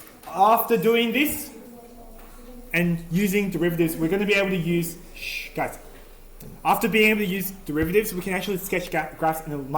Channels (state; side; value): identical; both; correlation 1.00